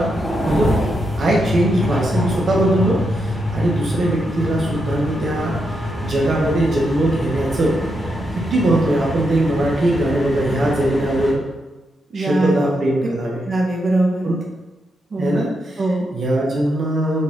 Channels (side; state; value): both; normal; correlation 0.83